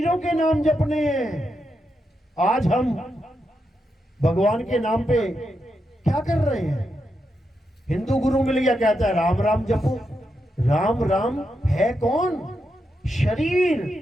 के नाम जपने हैं। आज हम भगवान के नाम पे क्या कर रहे हैं? हिंदू गुरु मिल गया, कहता है राम राम जपो। राम राम है कौन?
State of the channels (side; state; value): both; normal; correlation 0.84